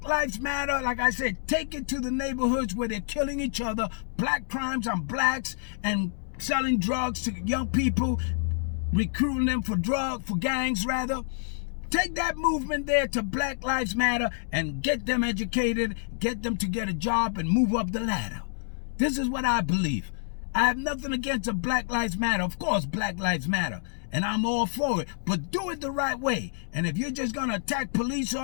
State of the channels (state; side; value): silent; right; digital silence